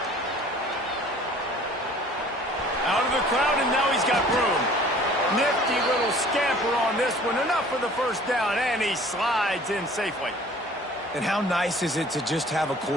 Out of the crowd, and now he's got room. Nifty little scamper on this one. Enough for the first down, and he slides in safely. And how nice is it to just have a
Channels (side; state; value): both; normal; correlation 0.50